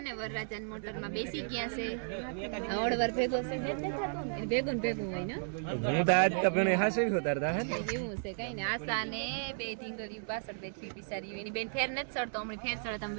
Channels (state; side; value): silent; left; digital silence